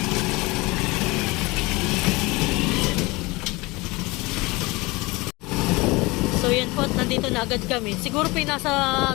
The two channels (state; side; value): quieter; right; 23.4 dB